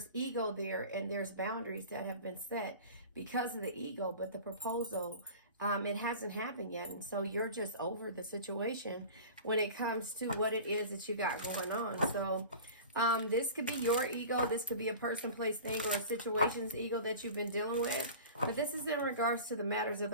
ego there, and there's boundaries that have been set because of the ego. But the proposal, it hasn't happened yet. And so you're just over the situation when it comes to what it is that you got going on. So this could be your ego. This could be a person, place, thing, or a situation's ego that you've been dealing with. But this is in regards to the matters of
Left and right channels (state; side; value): inverted; both; correlation -0.38